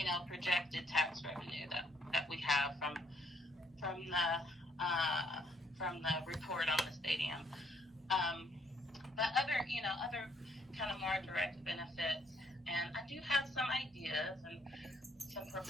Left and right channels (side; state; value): both; normal; correlation 0.68